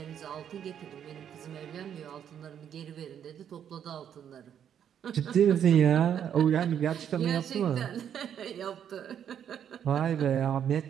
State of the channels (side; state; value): left; quieter; 9.1 dB